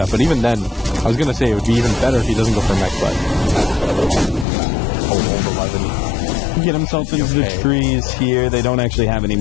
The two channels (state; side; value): drops out; right; at 4.5 s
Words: but even then, I was gonna say it would be even better if he doesn't go for mech, but old 11. Get himself into the trees here. They don't actually have any